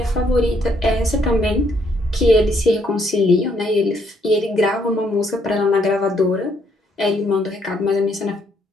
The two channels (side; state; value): both; normal; correlation 0.70